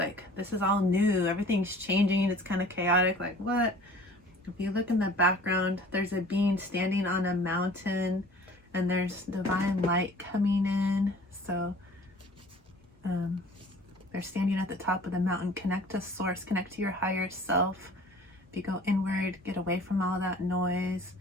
this is all new. Everything's changing. It's kind of chaotic. Like, what? If you look in the background, there's a being standing on a mountain, and there's divine light coming in. So they're standing at the top of the mountain. Connect to source, connect to your higher self. If you go inward, get away from all that noise,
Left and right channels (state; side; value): normal; both; correlation 0.48